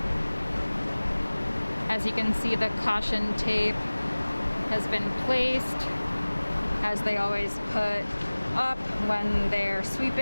As you can see, the caution tape has been placed, as they always put up when they're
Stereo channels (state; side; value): inverted; both; correlation -1.00